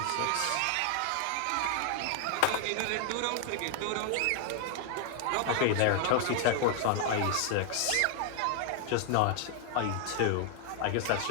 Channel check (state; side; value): different; both; correlation 0.00